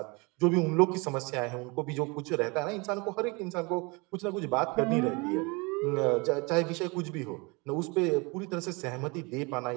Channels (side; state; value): left; quieter; 28.1 dB